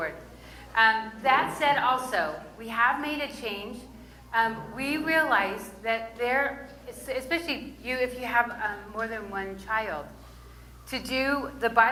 That said, also, we have made a change. We realize that especially if you have more than one child, to do the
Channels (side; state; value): both; identical; correlation 1.00